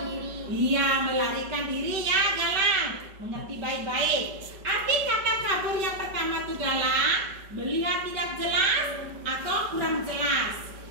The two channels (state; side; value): late; left; 5.2 ms